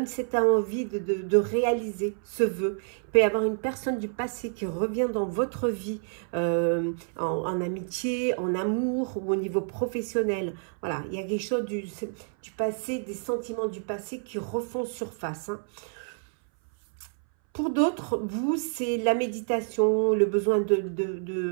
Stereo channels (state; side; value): silent; left; 59 dB below the other